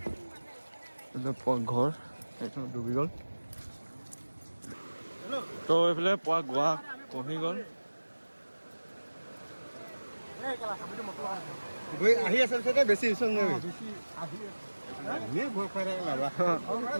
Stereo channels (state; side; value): inverted; both; correlation -1.00